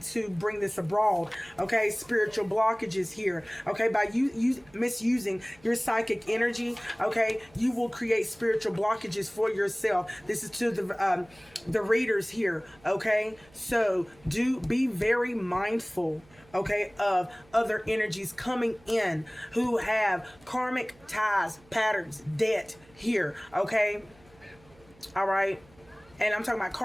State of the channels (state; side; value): noise; right; hum, 28 dB below the sound